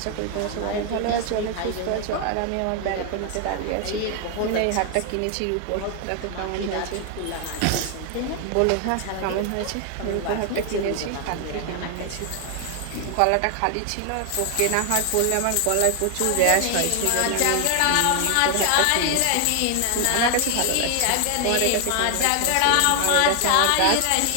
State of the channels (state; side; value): different; both; correlation 0.00